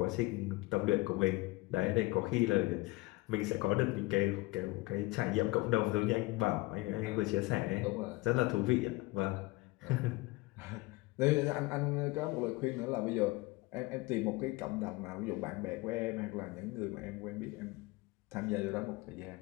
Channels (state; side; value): quieter; right; 21.9 dB